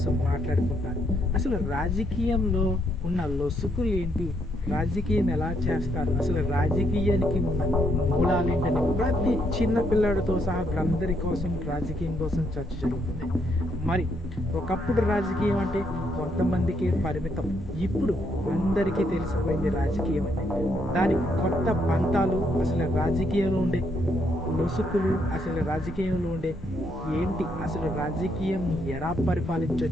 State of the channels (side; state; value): both; normal; correlation 0.74